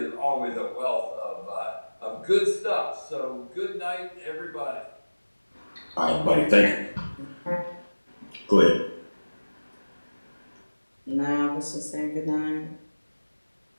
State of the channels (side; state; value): both; inverted; correlation -1.00